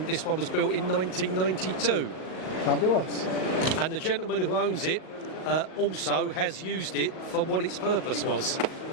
this one was built in 1992. Fabulous. And the gentleman who owns it also has used it for what its purpose was,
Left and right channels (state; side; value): late; right; 38 ms